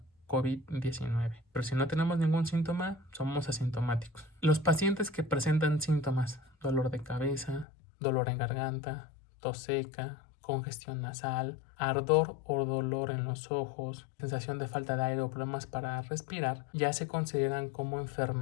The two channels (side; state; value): right; drops out; at 7.7 s